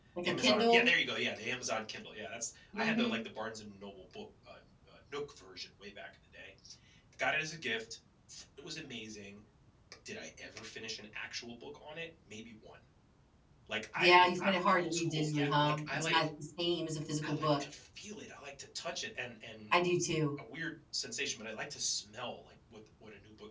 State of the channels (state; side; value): identical; both; correlation 1.00